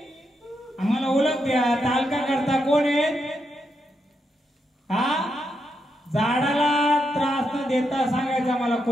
आम्हाला ओळख द्या ताल का करता कोण आहे हा झाडाला त्रास न देता सांगायचं आम्हाला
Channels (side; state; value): both; normal; correlation 0.82